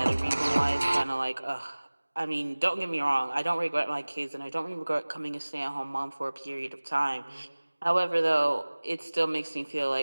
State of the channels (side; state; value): both; inverted; correlation -1.00